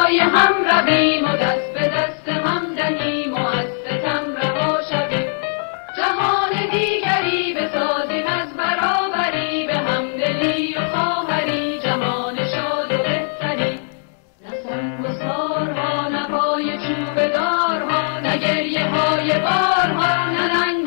هم رویم و دست به دست هم دهیم و از ستم رها شویم جهان دیگری بسازیم از برابری به همدلی و خواهری جهان شاد و بهتری نه سنگسارها نه پای چوب دارها نه گریه های بارها نه ننگ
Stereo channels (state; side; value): silent; right; digital silence